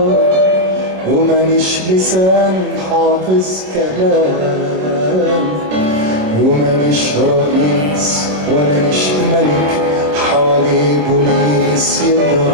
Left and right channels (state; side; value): late; left; 27 ms